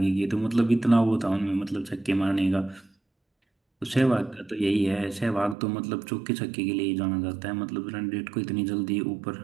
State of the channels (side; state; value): left; drops out; at 5.6 s